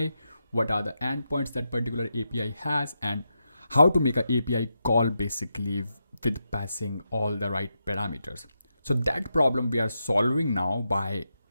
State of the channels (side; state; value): both; inverted; correlation -0.86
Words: what are the endpoints that particular API has, and how to make an API call basically with passing all the right parameters. So that problem we are solving now by